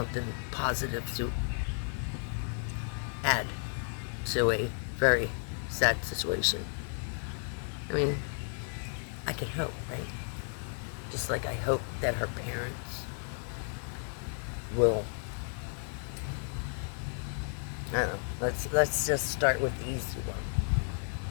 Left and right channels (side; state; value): right; silent; 56 dB below the other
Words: positive to add to a very sad situation. I mean, I can hope, right? Just like I hope that her parents will, I don't know, let's just start with the easy one.